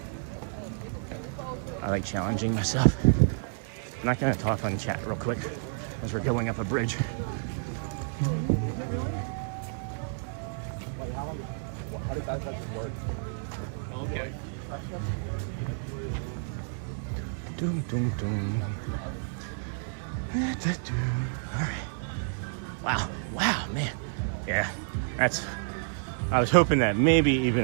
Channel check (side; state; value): left; silent; digital silence